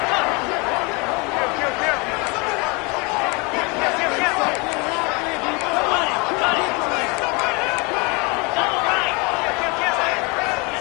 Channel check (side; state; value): right; quieter; 29.0 dB